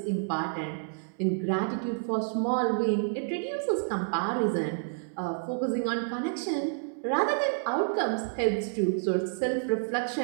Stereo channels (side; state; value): left; silent; 58 dB below the other